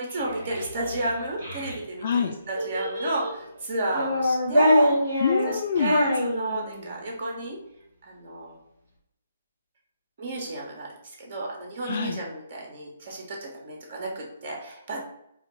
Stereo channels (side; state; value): both; inverted; correlation -0.77